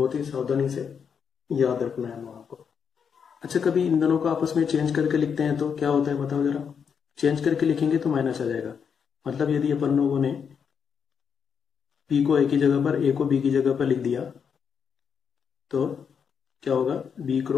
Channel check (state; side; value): quieter; right; 6.9 dB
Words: ही सावधानी से याद रखना है वहां को। अच्छा, कभी इन दोनों को आपस में चेंज करके लिखते हैं तो क्या होता है बताओ जरा। चेंज करके लिखेंगे तो माइनस आ जाएगा, मतलब यदि अपन लोगों ने P को A की जगह पर, A को B की जगह पर लिख दिया तो क्या होगा, B